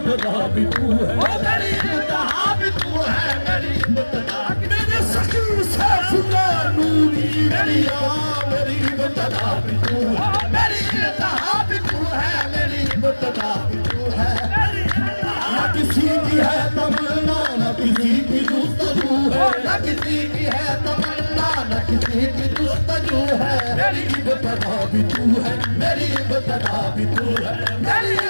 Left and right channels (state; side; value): inverted; both; correlation -1.00